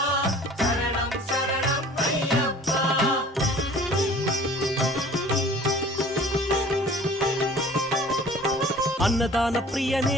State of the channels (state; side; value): normal; both; correlation 0.47